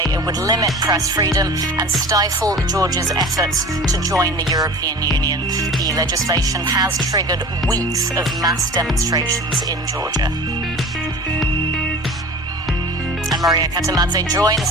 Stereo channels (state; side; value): normal; both; correlation 0.38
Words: it would limit press freedom and stifle Georgia's efforts to join the European Union. The legislation has triggered weeks of mass demonstrations in Georgia. And Maria Katamadze